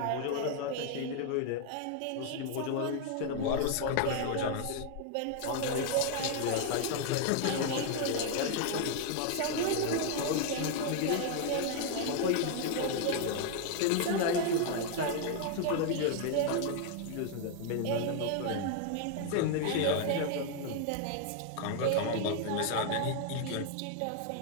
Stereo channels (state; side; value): different; both; correlation 0.00